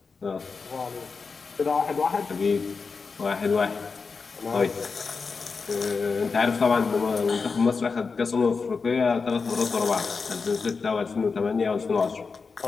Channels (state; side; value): quieter; right; 4.8 dB